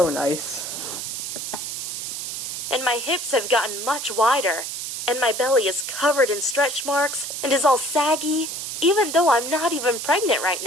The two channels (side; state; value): right; noise; hiss, 5 dB below the sound